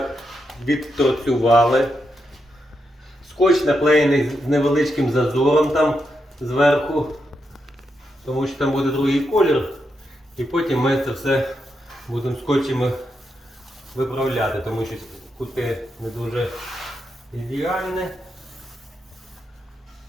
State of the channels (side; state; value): both; normal; correlation 0.84